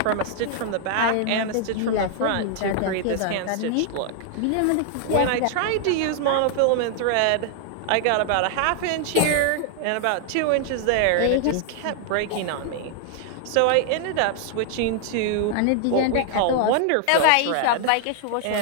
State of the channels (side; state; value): both; different; correlation 0.00